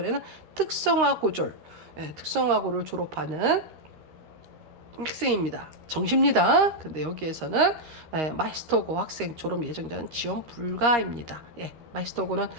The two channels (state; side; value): late; left; 13 ms